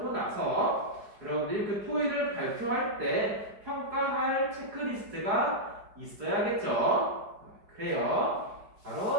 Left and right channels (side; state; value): left; late; 4.8 ms